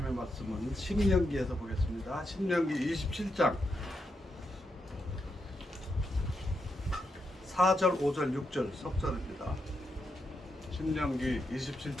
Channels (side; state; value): both; normal; correlation 0.83